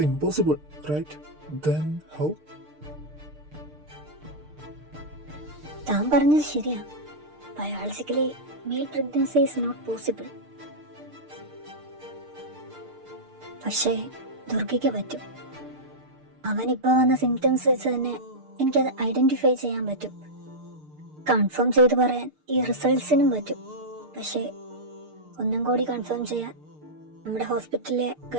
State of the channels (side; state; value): left; late; 6.6 ms